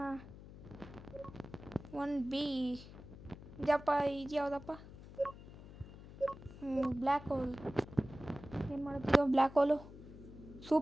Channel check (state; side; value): noise; left; hum, 16 dB below the sound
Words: 1B ಇದಪ್ಪ, ಇದು ಯಾವುದಪ್ಪ? Black hole. ಏನು ಮಾಡುತ್ತಿದ್ದೋ black hole?